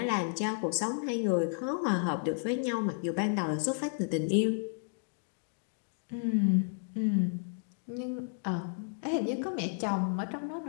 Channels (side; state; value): right; silent; digital silence